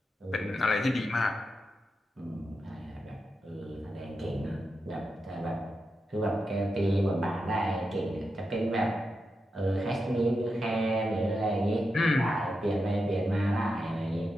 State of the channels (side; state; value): both; normal; correlation 0.88